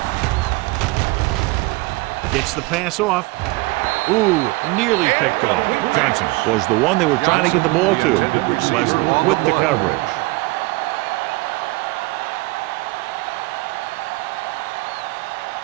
B. Gets the pass off. Ooh, nearly picked off. Johnson was the one they were trying to get the ball to. Leslie with the coverage.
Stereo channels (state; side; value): quieter; left; 22.8 dB